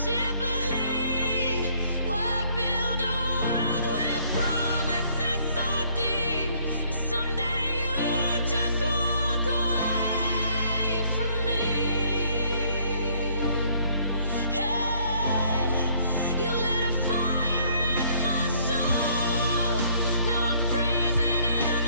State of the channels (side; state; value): both; inverted; correlation -0.63